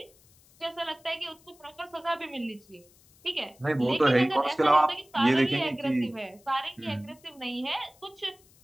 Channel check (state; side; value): noise; left; hiss, 29 dB below the sound